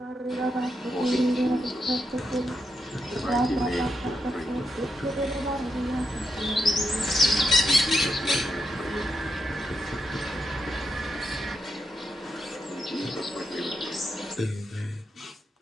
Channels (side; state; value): both; normal; correlation 0.84